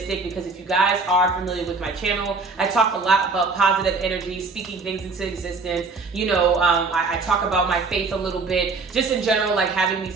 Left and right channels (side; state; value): left; quieter; 4.1 dB